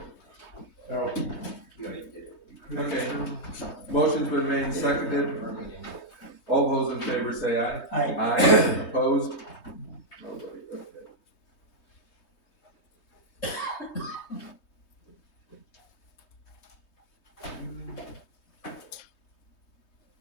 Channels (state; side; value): late; right; 3.2 ms